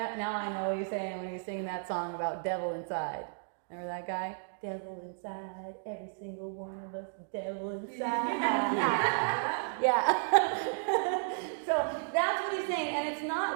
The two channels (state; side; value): silent; left; digital silence